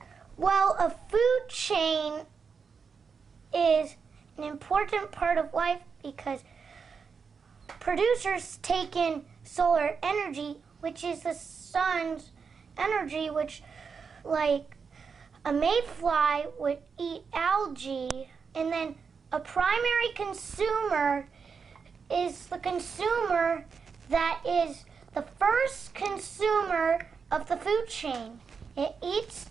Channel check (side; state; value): left; quieter; 5.7 dB